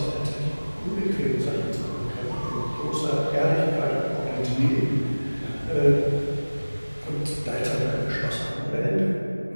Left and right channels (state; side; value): inverted; both; correlation -1.00